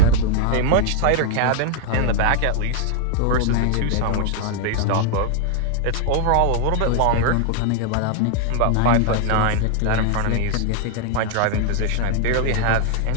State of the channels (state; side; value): different; both; correlation 0.00